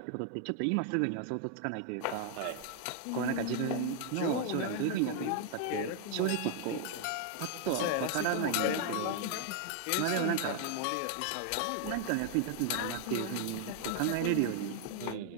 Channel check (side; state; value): both; different; correlation 0.00